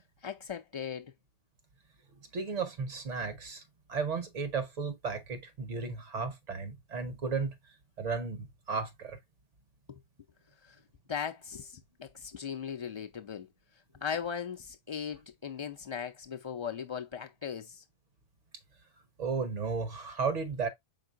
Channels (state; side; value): late; left; 1.3 ms